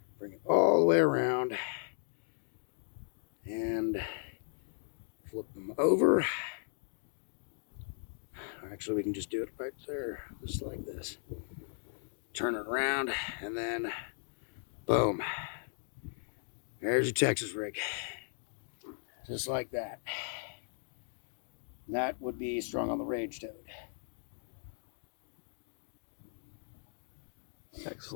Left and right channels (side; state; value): right; silent; digital silence